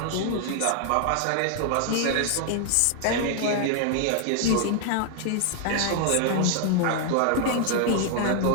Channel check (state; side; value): different; both; correlation 0.00